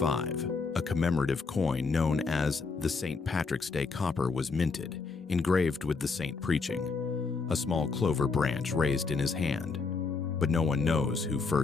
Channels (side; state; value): right; quieter; 4.5 dB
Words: a commemorative coin known as the St. Patrick's Day copper was minted, engraved with the saint preaching, a small clover branch raised in his hand. But no one knows who